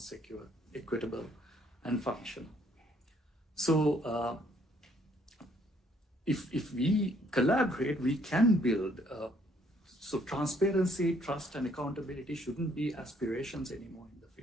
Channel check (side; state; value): both; normal; correlation 0.66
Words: equitable, and functional. So if we collaborate, we can build. So transparency, trust, and accountability shouldn't be aspirations anymore in the